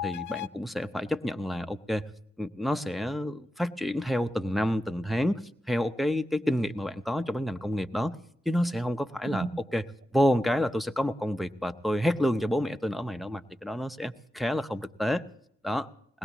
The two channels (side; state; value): both; normal; correlation 0.91